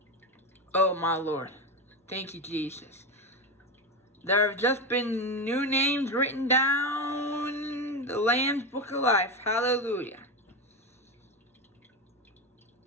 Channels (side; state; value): both; normal; correlation 0.16